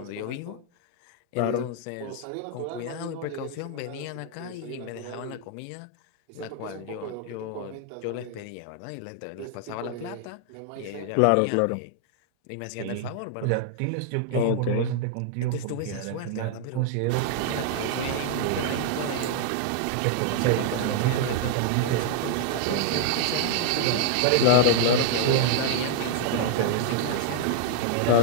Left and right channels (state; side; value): different; both; correlation -0.01